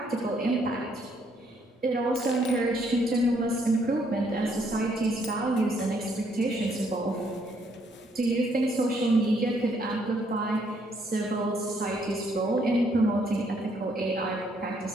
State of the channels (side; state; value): both; normal; correlation 0.70